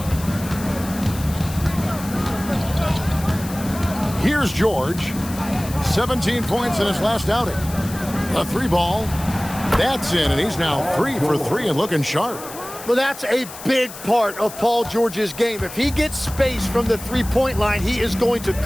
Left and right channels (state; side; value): noise; left; hiss, 14 dB below the sound